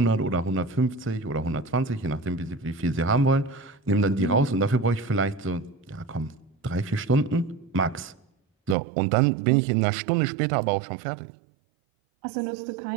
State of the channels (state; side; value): drops out; left; at 8.8 s